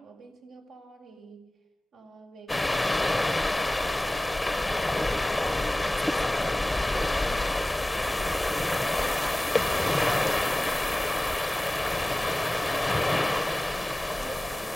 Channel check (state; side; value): normal; both; correlation 0.98